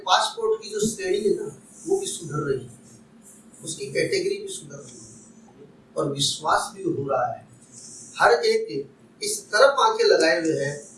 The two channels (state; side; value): identical; both; correlation 1.00